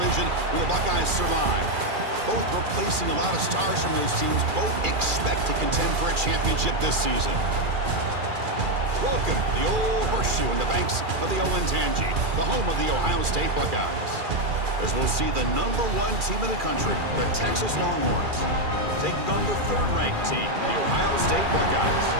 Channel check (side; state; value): left; late; 2.4 ms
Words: where the Buckeyes survived. Both replacing a lot of stars from those teams. Both expect to contend for a championship this season. Welcome to the old horseshoe in the banks of the Olentangy, the home of the Ohio State Buckeyes. As we'll see the #1 team in the country, the Texas Longhorns, taking on the third-ranked team, the Ohio State Buckeyes.